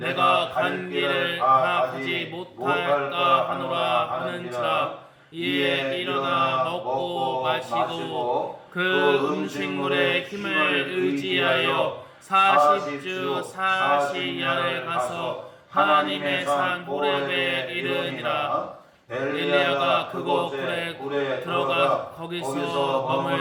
간 길을 다 가지 못할까 하노라 하는지라. 이에 일어나 먹고 마시고 그 음식물의 힘을 의지하여 40주 40야를 가서 하나님의 산 호렙에 이르니라. 엘리야가 그곳에 들어가 거기서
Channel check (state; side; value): identical; both; correlation 1.00